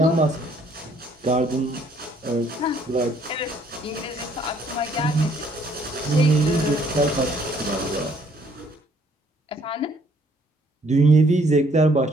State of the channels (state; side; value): normal; both; correlation 0.64